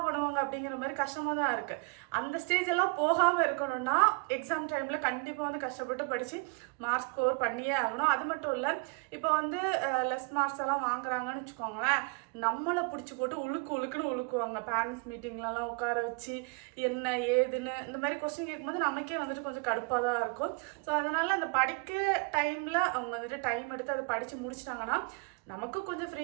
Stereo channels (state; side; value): quieter; left; 33.3 dB